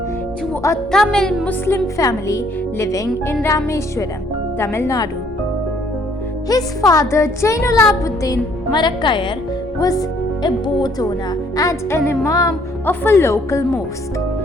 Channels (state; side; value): normal; both; correlation 0.64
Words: to a Tamil Muslim family living in Rameswaram, Tamil Nadu. His father Jainulabuddin Marakayar was a boat owner and an imam of a local mosque.